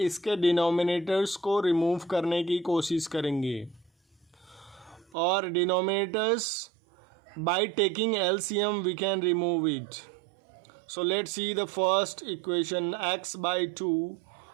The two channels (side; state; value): left; drops out; at 5.1 s